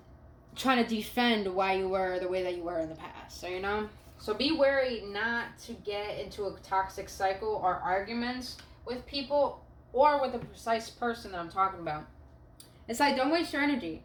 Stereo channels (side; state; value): both; identical; correlation 1.00